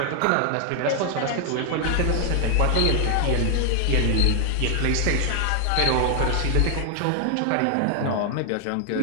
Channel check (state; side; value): different; both; correlation 0.00